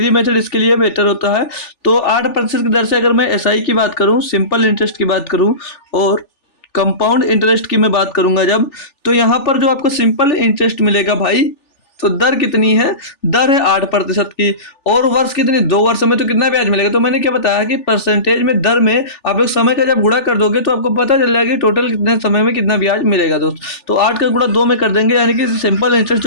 मेथड इसके लिए बेटर होता है। तो 8% की दर से अगर मैं एसआई की बात करूँ, सिंपल इंटरेस्ट की बात करूँ और कंपाउंड इंटरेस्ट की मैं बात करूँगा जब, तो यहाँ पर जो आपको सिंपल इंटरेस्ट मिलेगा भाई, तो दर कितनी है? दर है 8% की। और वर्ष कितनी? 2 वर्ष में तो कितना ब्याज मिलेगा? तो मैंने क्या बताया कि परसेंटेज में दर में आप लोग समय का जब गुणा कर दोगे तो आपको पता चल जाएगा कि टोटल कितने समय में कितना ब्याज मिलेगा दोस्त। तो 8 का गुणा 2 में कर देंगे, यानी कि सिंपल इंटरेस्ट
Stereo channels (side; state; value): right; late; 3.4 ms